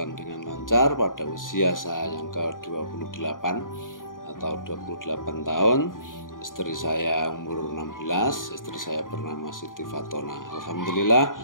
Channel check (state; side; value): late; right; 0.89 ms